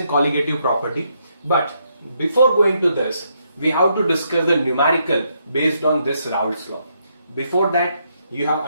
colligative property. But before going to this, we have to discuss the numerical based on this Raults law. Before that, you have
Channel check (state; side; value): inverted; both; correlation -0.76